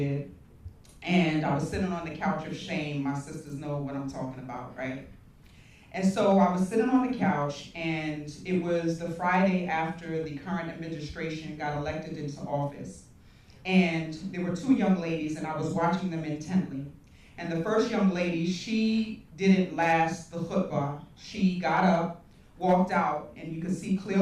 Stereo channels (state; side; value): identical; both; correlation 1.00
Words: and I was sitting on the couch of shame. My sisters know what I'm talking about, right? And so I was sitting on the couch, and it was the Friday after the current administration got elected into office. And there were 2 young ladies, and I was watching them intently. And the first young lady, she didn't last the khutbah. She got up, walked out, and you could see